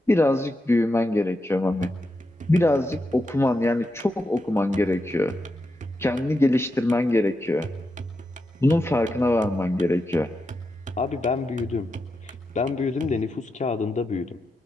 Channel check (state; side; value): normal; both; correlation 0.87